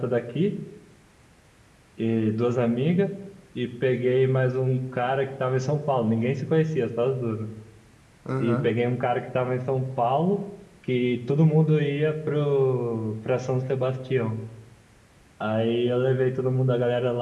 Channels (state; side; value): identical; both; correlation 1.00